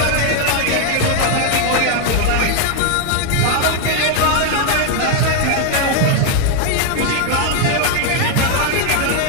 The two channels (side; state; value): both; different; correlation 0.01